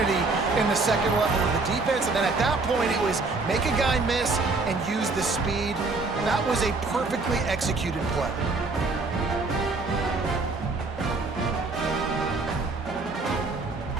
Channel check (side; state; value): left; quieter; 3.7 dB